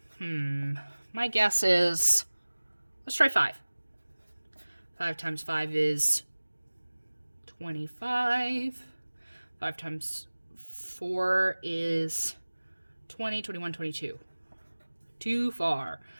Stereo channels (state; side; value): inverted; both; correlation -1.00